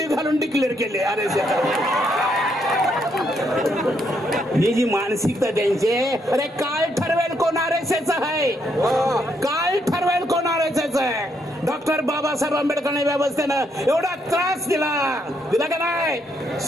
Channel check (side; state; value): both; normal; correlation 0.75